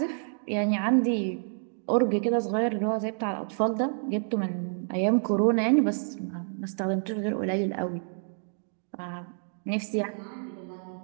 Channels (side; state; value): left; silent; digital silence